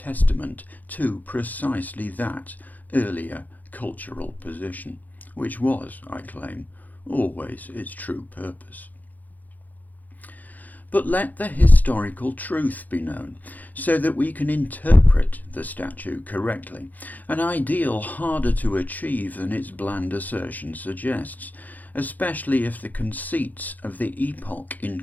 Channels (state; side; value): late; right; 0.082 ms